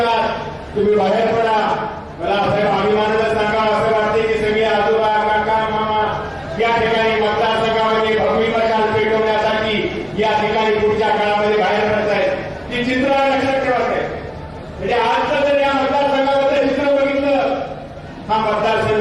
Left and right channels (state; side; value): identical; both; correlation 1.00